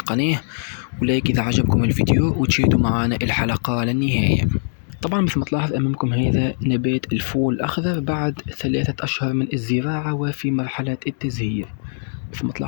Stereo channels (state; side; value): silent; right; digital silence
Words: ولايك إذا عجبكم الفيديو وتشاهدوا معنا الحلقة للنهاية. طبعا مثل ما تلاحظ أمامكم هذا نبات الفول الأخضر بعد 3 أشهر من الزراعة وفي مرحلة التزهير مثل ما